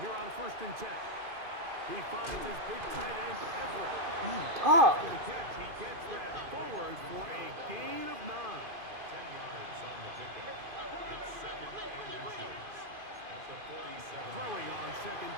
here on 1st and 10. He finds his big tight end, Everett. After the catch, he gets that forward for a gain of 9. 10 yards on the pickup. It's 2nd and inches at the 47. Throwing on 2nd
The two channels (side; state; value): left; late; 2.5 ms